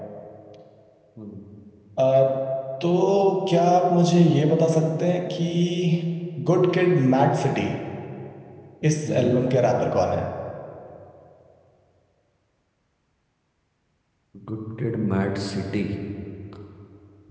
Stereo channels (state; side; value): identical; both; correlation 1.00